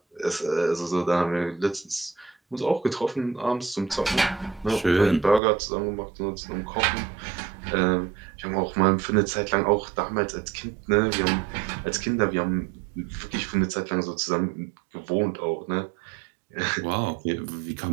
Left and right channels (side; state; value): left; drops out; at 5.4 s